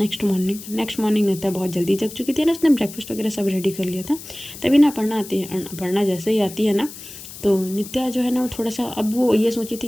मॉर्निंग नित्या बहुत जल्दी जग चुकी थी ना, उसने ब्रेकफास्ट वगैरह सब रेडी कर लिया था। तभी ना अपर्णा आती है, अपर्णा जैसे ही आती है ना तो नित्या जो है ना वो थोड़ा सा, अब वो ये सोची थी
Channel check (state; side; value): noise; left; hiss, 14 dB below the sound